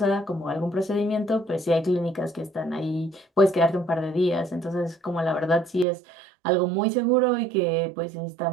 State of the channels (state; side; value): drops out; left; at 5.9 s